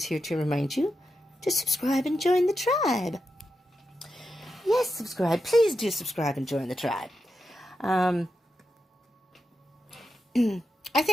here to remind you to subscribe and join the tribe. Yes, subscribe. Please do subscribe and join the tribe. I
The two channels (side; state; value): both; normal; correlation 0.88